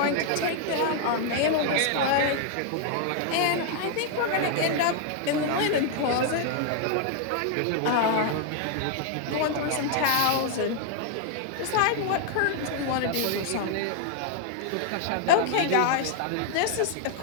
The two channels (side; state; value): both; different; correlation 0.00